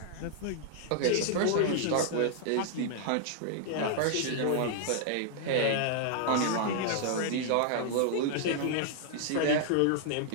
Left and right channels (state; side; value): different; both; correlation -0.01